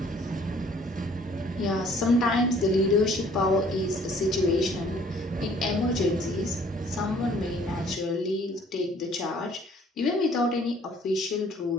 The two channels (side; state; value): both; normal; correlation 0.58